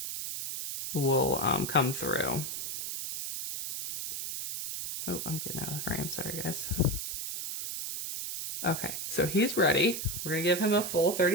will come through. Oh, I'm getting out of frame. Sorry, guys. Okay, so he's ready. We're going to give him a full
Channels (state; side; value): noise; right; hiss, 5 dB below the sound